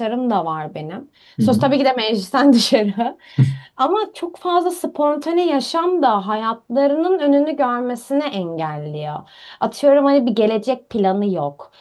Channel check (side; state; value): both; identical; correlation 1.00